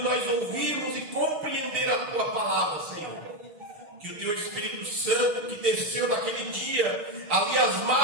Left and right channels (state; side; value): late; left; 6.8 ms